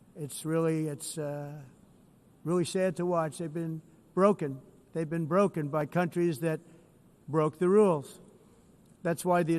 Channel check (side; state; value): both; identical; correlation 1.00